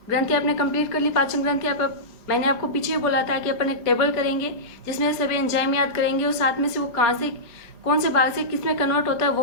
ग्रंथि आपने कंप्लीट कर ली, पाचन ग्रंथि। मैंने आपको पीछे ही बोला था कि अपन एक टेबल करेंगे जिसमें सभी एंजाइम याद करेंगे और साथ में से वो कहाँ से कौन से भाग से किस में कन्वर्ट होता है वो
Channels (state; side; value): late; right; 4.3 ms